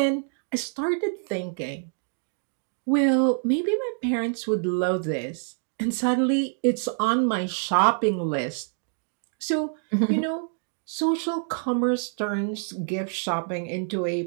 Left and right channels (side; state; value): left; silent; 59 dB below the other